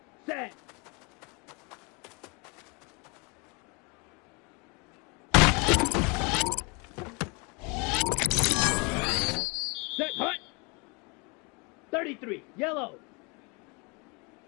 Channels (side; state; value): right; quieter; 30.5 dB